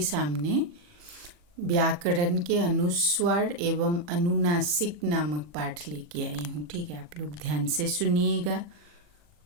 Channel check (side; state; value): left; late; 40 ms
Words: सामने व्याकरण के अनुस्वार एवं अनुनासिक नामक पाठ लेके आई हूँ। ठीक है, आप लोग ध्यान से सुनिएगा